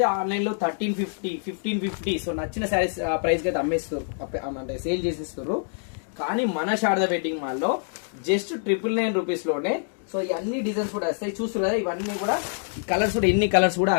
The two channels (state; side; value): silent; right; digital silence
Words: ఆన్లైన్ లో 1350 సో నచ్చిన శారీస్ ప్రైస్ కి అయితే అమ్మేస్తారు, అంటే సేల్ చేసేస్తారు. కానీ మన శారదా వెడ్డింగ్ మాల్ లో జస్ట్ 999 రూపీస్ లోనే సో ఈ అన్ని డిజైన్స్ కూడా వస్తాయి. చూస్తారు కదా, ఇవన్నీ కూడా కలర్స్ కూడా ఎన్ని కలర్స్ కూడా